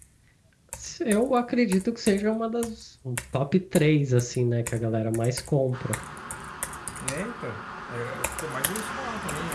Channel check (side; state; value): both; identical; correlation 1.00